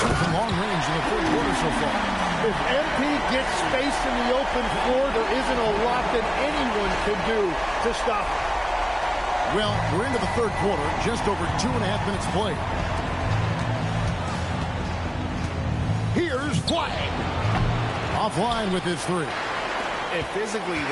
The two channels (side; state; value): both; identical; correlation 1.00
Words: from long range in the 3rd quarter so far. If MP gets space in the open floor, there isn't a lot that anyone can do to stop it. Well, we're into the 3rd quarter, just over 2.5 minutes played. Here's Flag. Offline with his 3. And physically,